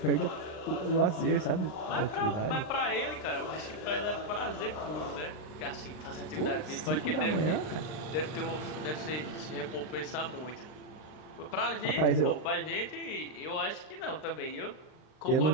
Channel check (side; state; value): right; late; 39 ms